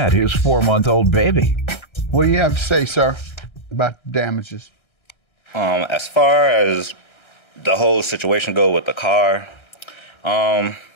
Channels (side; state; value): right; late; 1.3 ms